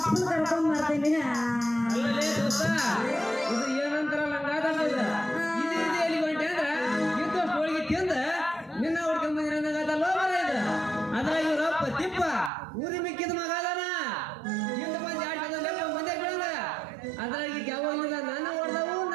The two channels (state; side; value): drops out; left; at 12.5 s